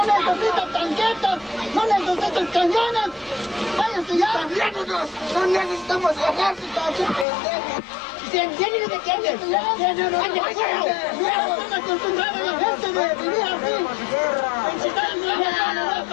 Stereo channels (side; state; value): right; drops out; at 7.2 s